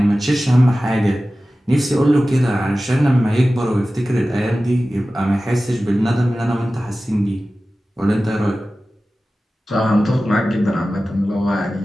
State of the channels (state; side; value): normal; both; correlation 0.95